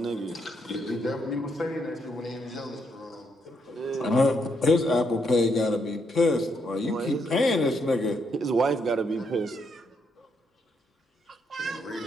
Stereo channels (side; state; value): both; normal; correlation 0.76